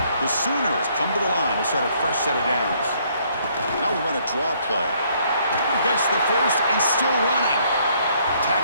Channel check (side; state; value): both; inverted; correlation -0.66